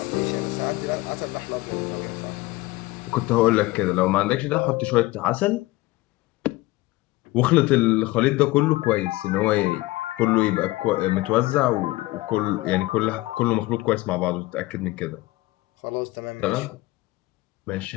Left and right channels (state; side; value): quieter; right; 19.7 dB